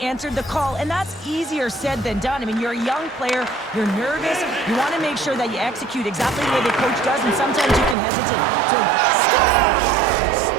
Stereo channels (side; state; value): left; drops out; at 8.0 s